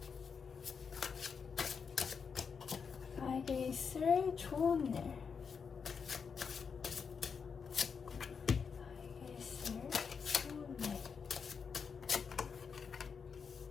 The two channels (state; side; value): quieter; right; 6.0 dB